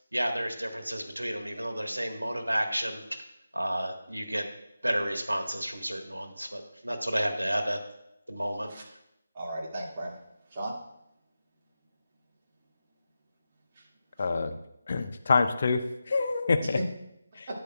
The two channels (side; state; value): both; inverted; correlation -0.93